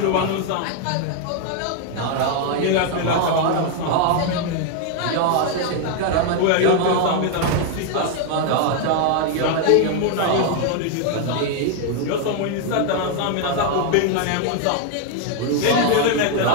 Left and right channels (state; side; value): different; both; correlation 0.01